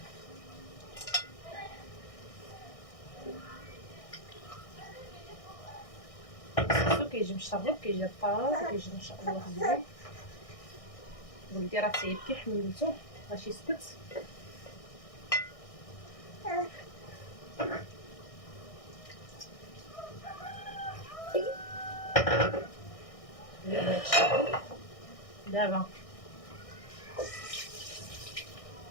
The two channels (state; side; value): late; right; 1.6 ms